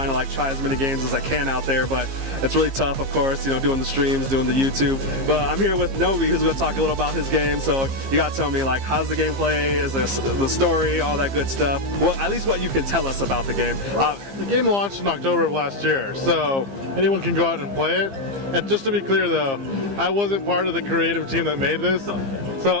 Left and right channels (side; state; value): left; late; 15 ms